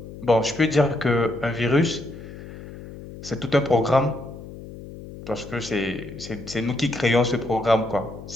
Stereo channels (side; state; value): left; noise; hum, 14 dB below the sound